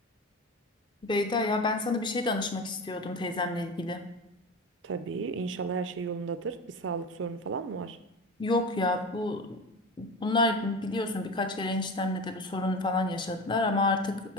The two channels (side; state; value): both; normal; correlation 0.28